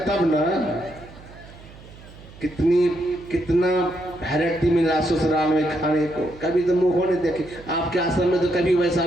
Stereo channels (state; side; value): noise; right; hum, 20 dB below the sound